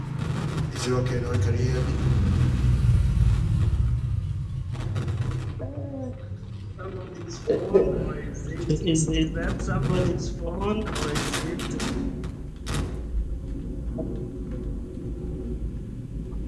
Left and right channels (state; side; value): identical; both; correlation 1.00